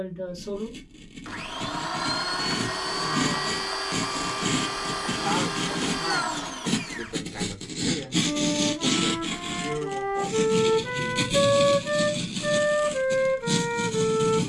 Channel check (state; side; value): identical; both; correlation 1.00